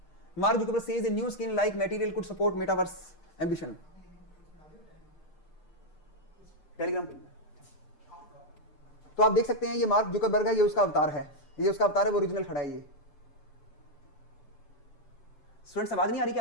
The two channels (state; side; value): late; right; 6.7 ms